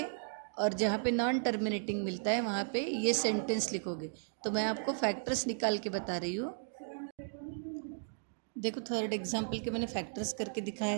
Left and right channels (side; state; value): left; silent; digital silence